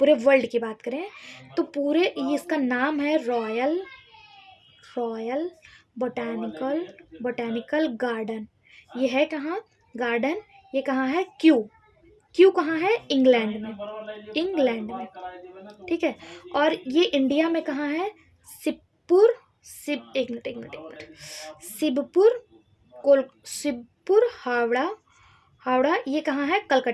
वर्ल्ड की बात करें तो पूरे ये इसका नाम है रॉयल बॉटैनिकल गार्डन। ये है कहाँ गार्डन? ये कहाँ है? क्यू कहाँ है? इंग्लैंड में, ठीक है। और ये इंडिया में कहाँ है? एक मिनट शिवपुर हावड़ा ये कहाँ है?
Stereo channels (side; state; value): both; identical; correlation 1.00